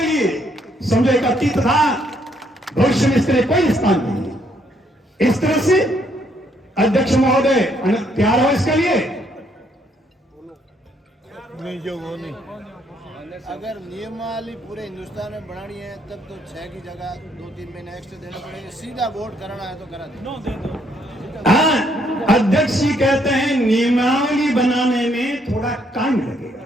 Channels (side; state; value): both; normal; correlation 0.70